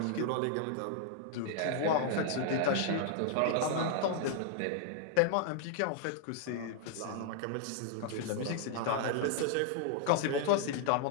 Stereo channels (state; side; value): different; both; correlation -0.01